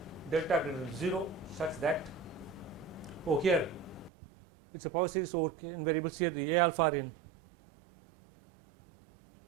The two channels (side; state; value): left; drops out; at 4.1 s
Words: delta greater than 0 such that, here it's a power series over in variables, here the a alpha are in